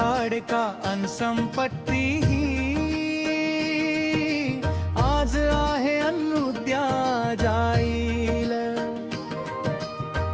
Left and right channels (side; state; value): both; identical; correlation 1.00